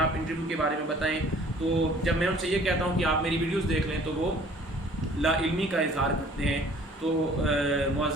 انٹرویو کے بارے میں بتائیں، تو جب میں ان سے یہ کہتا ہوں کہ آپ میری ویڈیوز دیکھ لیں تو وہ لا علمی کا اظہار کرتے ہیں۔ تو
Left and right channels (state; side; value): normal; both; correlation 0.54